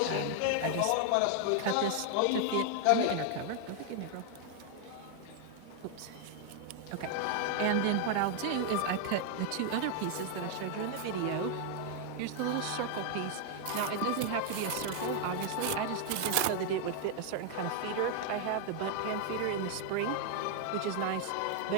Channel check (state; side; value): different; both; correlation 0.00